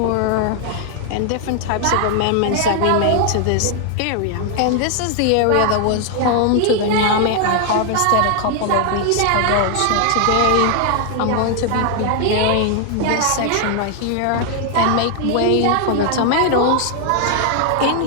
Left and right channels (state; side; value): different; both; correlation 0.00